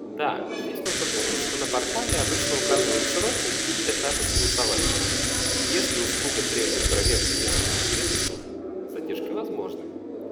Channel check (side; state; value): both; identical; correlation 1.00